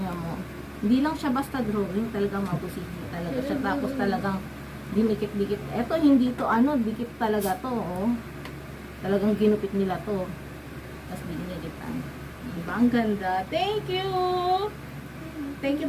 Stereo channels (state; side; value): identical; both; correlation 1.00